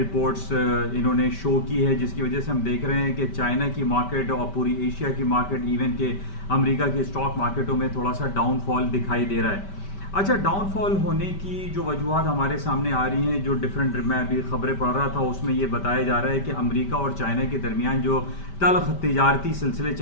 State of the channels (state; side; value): late; right; 5.1 ms